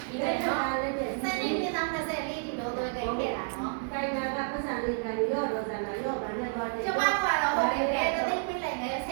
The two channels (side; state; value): left; silent; digital silence